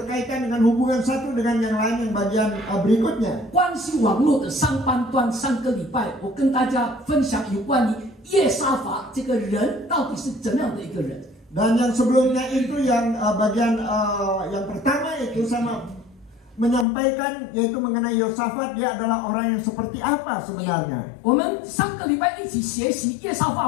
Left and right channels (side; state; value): right; drops out; at 16.9 s